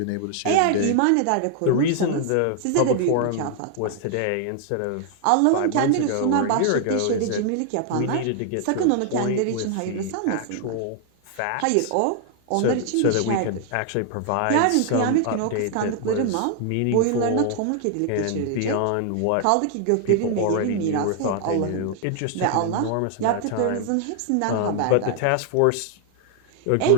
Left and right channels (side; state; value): both; different; correlation 0.00